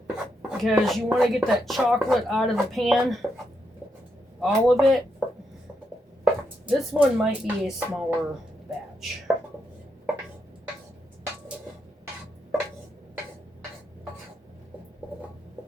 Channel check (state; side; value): normal; both; correlation 0.82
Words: Because you want to get that chocolate out of the pan. All of it. This one might be a smaller batch.